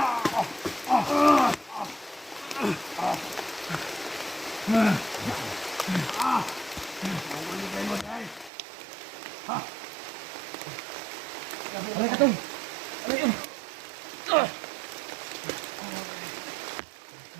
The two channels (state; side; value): drops out; left; at 8.5 s